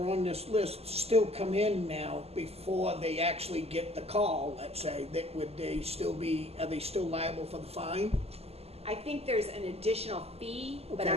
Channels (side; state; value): left; late; 0.29 ms